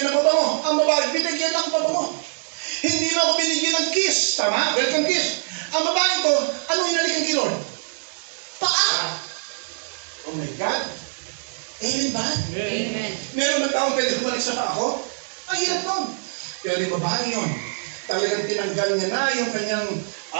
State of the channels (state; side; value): silent; left; digital silence